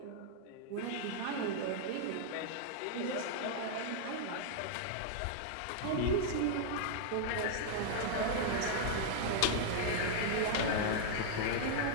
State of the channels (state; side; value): different; both; correlation -0.01